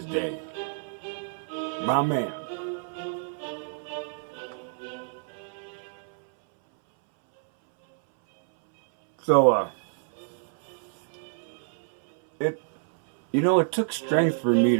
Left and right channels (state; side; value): silent; left; 60 dB below the other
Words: day. My man. So, it took strength for me